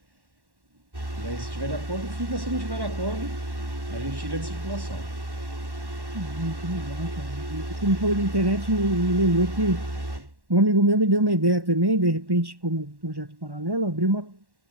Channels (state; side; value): late; left; 1.1 ms